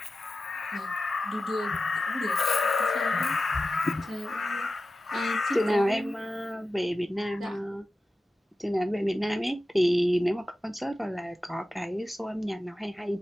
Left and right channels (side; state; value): both; normal; correlation 0.93